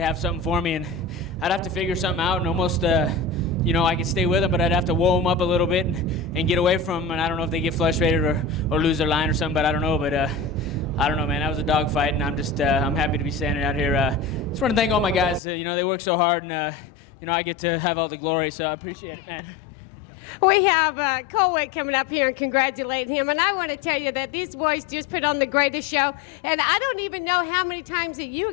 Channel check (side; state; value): right; drops out; at 15.4 s